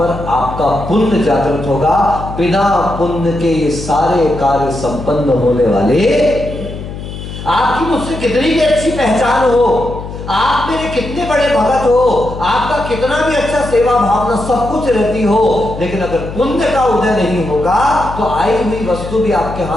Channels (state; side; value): noise; left; hum, 10 dB below the sound